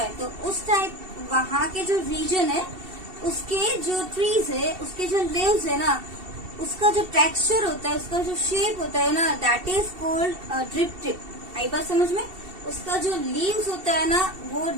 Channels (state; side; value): late; left; 2.7 ms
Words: तो उस टाइप वहाँ के जो रीजन है उसके जो ट्रीज है, उसके जो लीव्स है ना, उसका जो टेक्सचर होता है, उसका जो शेप होता है ना, that is called drip tip. आई बात समझ में? उसका जो लीव्स होता है ना वो